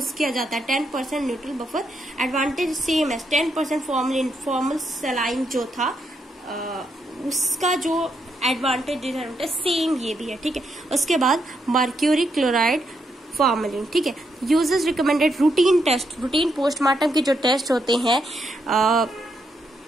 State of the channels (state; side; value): normal; both; correlation 0.79